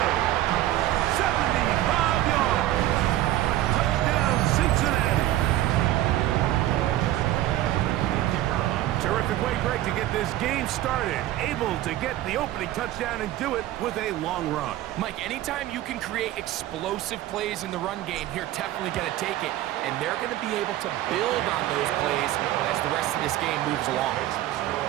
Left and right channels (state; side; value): quieter; left; 14.4 dB